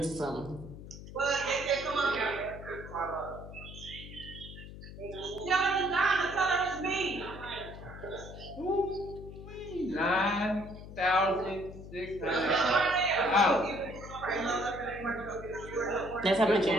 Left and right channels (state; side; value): noise; left; hum, 13 dB below the sound